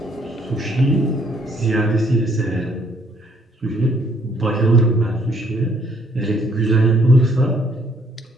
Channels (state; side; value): normal; both; correlation 0.66